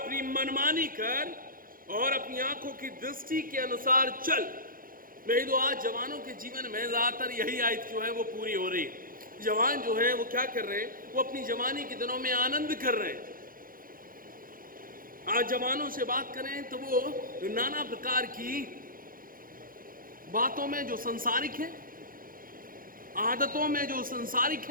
मनमानी कर, और अपनी आंखों की दृष्टि के अनुसार चल। मैं तो आज जवानों के जीवन में ज्यादातर यही आयत जो है वो पूरी हो रही है। जवान जो है वो क्या कर रहे हैं? वो अपनी जवानी के दिनों में आनंद कर रहे हैं। आज जवानों से बात करें तो वो नाना प्रकार की बातों में जो संसारिक है, आदतों में जो संसारिक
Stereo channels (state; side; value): late; left; 0.41 ms